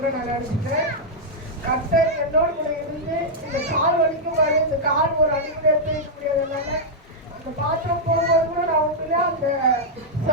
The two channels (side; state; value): both; normal; correlation -0.06